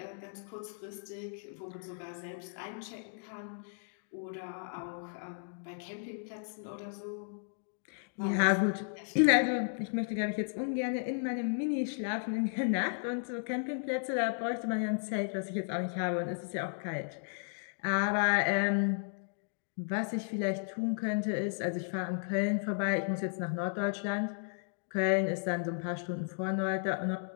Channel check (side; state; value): right; silent; digital silence